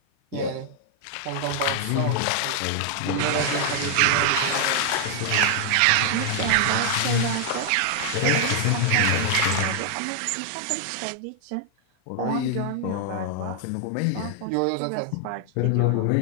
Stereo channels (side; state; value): both; different; correlation 0.00